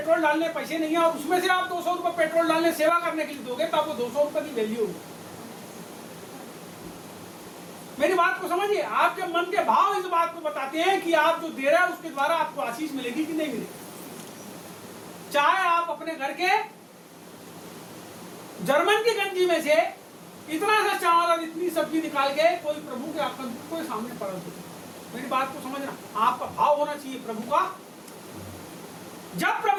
डालने पैसे नहीं है और उसमें से आप 200 रुपए पेट्रोल डालने सेवा करने के लिए दोगे, तो आपको 200 रुपए की वैल्यू होगी। मेरी बात को समझिए, आपके मन के भाव इस बात को बताते हैं कि आप जो दे रहे हैं उसके द्वारा आपको आशीष मिलेगी कि नहीं मिलेगी। चाहे आप अपने घर के जर्मन की गंजी में से इतना सा चावल और इतनी सब्जी निकाल के कोई प्रभु के आपको सामने पड़ा दो। मेरी बात को समझना, आपका भाव होना चाहिए प्रभु का। जब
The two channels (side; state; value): both; identical; correlation 1.00